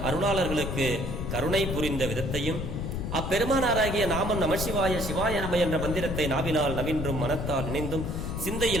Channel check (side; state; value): left; noise; rumble, 4 dB below the sound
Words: அருளாளர்களுக்கு கருணை புரிந்த விதத்தையும் அப்பெருமானாராகிய நாமம் நமசிவாய சிவாய நம என்ற மந்திரத்தை நாவினால் நவின்றும் மனத்தால் நினைந்தும்